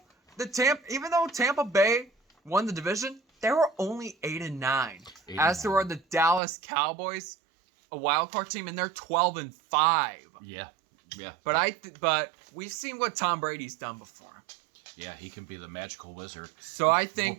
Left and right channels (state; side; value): drops out; left; at 6.4 s